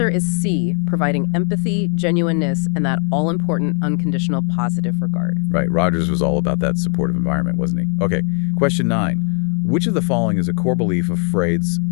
is C, providing empathy, genuineness, and that all-important unconditional positive regard. Right, Rogers was all about that supportive environment, wasn't he? Okay, question 9. Which of the following is a core belief of Freud's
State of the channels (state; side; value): quieter; right; 36.8 dB